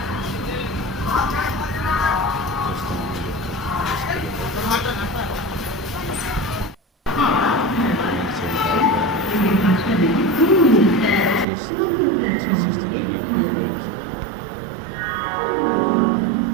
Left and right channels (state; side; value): drops out; left; at 11.5 s